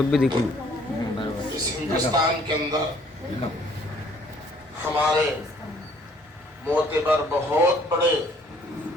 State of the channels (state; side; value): normal; both; correlation 0.60